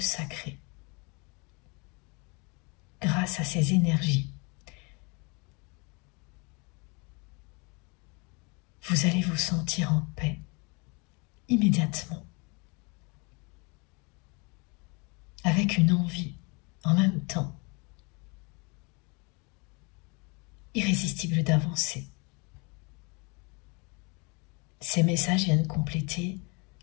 Grâce à ces énergies, vous allez vous sentir en paix immédiatement, avec une envie en même temps irrésistible d'avancer. Ces messages viennent compléter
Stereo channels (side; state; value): right; quieter; 30.5 dB